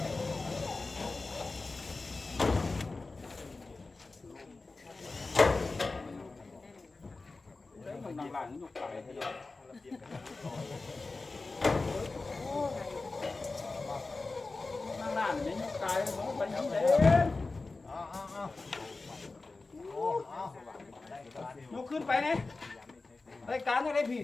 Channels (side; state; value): right; quieter; 3.6 dB